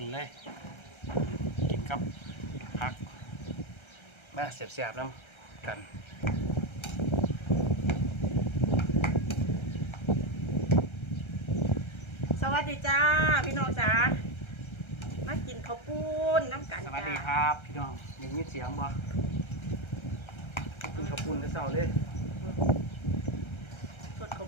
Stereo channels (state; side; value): late; right; 1.3 ms